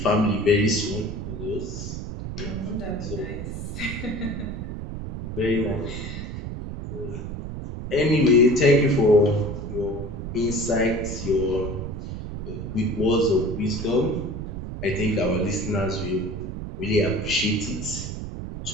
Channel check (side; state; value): right; noise; rumble, 7 dB below the sound